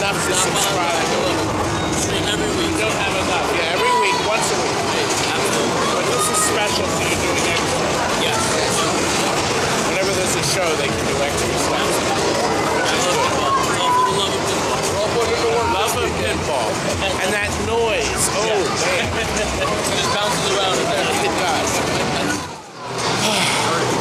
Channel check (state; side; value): identical; both; correlation 1.00